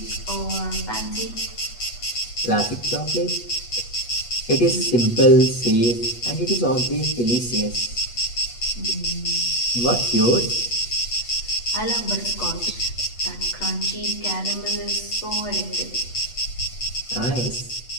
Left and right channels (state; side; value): late; right; 8.2 ms